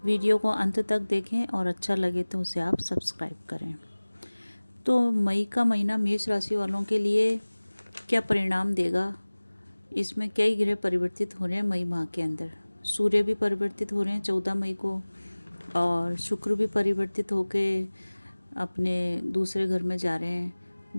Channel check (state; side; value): inverted; both; correlation -1.00